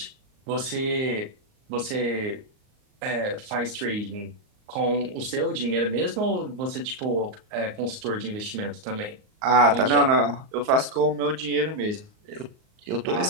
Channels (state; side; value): late; left; 38 ms